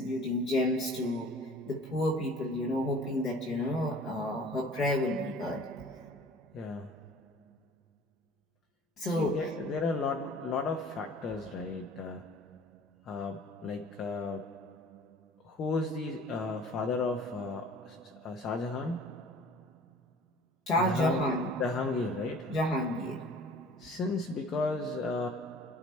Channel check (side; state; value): both; normal; correlation 0.48